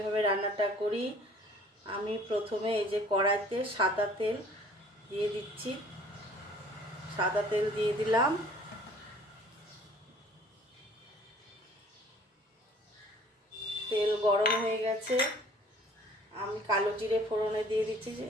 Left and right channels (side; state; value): both; normal; correlation 0.53